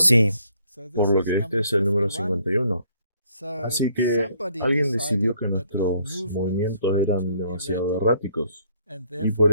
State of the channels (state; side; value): inverted; both; correlation -0.66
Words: Por lo que este es el número 51. Así que alguien decidió que nuestros movimientos eran demasiado erráticos y por